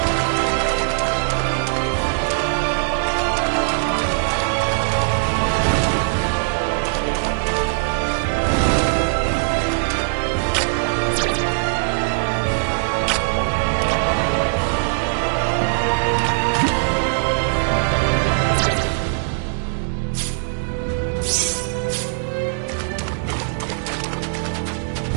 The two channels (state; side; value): silent; left; digital silence